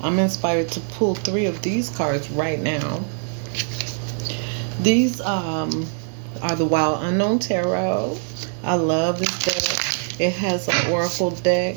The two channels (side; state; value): left; silent; digital silence